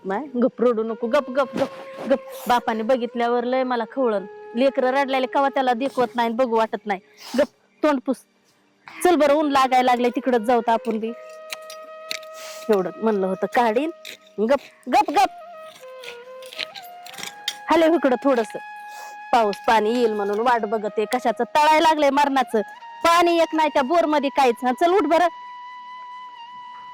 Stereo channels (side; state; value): both; identical; correlation 1.00